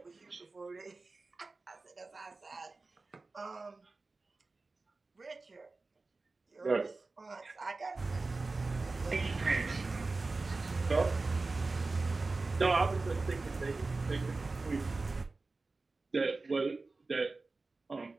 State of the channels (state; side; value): quieter; left; 3.6 dB